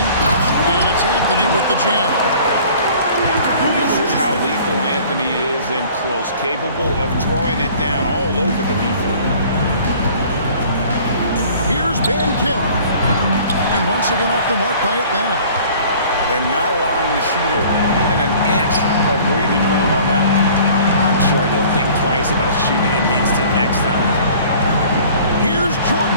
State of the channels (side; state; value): both; inverted; correlation -0.50